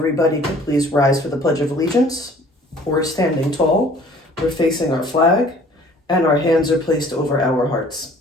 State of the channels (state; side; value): normal; both; correlation 0.53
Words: could please rise for the Pledge of Allegiance. We're standing tall, we're facing our flag, and our hands are placed over our hearts.